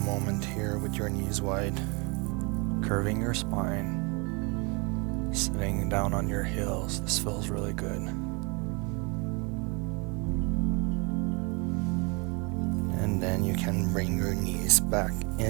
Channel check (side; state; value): left; quieter; 30.7 dB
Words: here with your knees wide, curving your spine, sitting down on your heels. This feels really good. And then you can bring your knees back